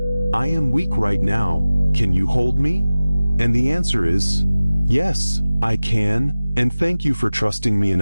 I am weak right now, can you hold me? And the answer is, yes, I can, and thank you for trusting me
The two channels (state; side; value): inverted; both; correlation -0.96